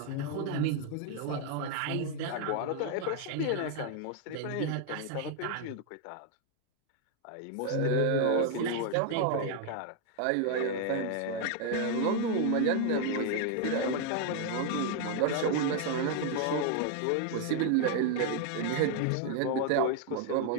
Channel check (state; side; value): different; both; correlation 0.00